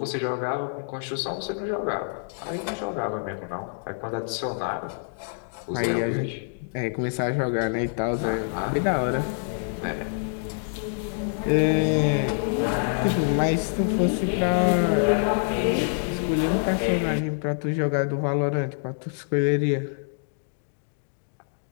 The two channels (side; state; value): right; silent; digital silence